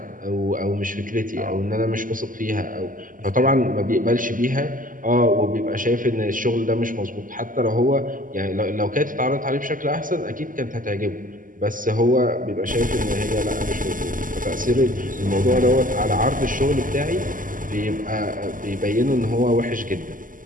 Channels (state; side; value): late; left; 0.39 ms